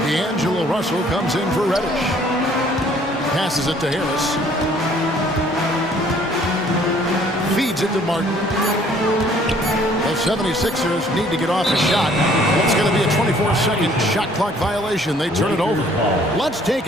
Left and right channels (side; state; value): both; normal; correlation 0.59